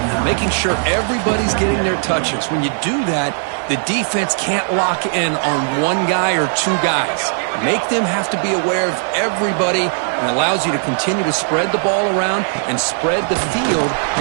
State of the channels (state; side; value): silent; left; digital silence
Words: making sure everybody's getting their touches. When you do that, the defense can't lock in on one guy or 2 guys. Make them have to be aware of everybody, and allows you to continue to spread the ball around and spread the field,